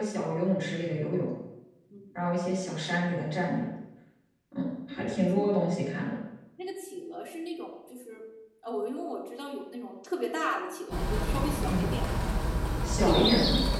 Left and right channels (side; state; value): both; identical; correlation 1.00